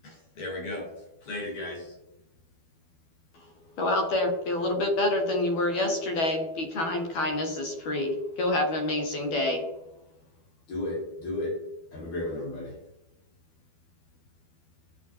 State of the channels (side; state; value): right; late; 12 ms